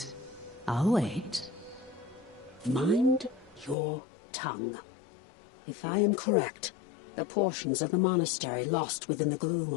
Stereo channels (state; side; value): drops out; right; at 3.8 s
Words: I'll wait. Mind your tongue. If I am correct, the portions of the monastery lost within the gloom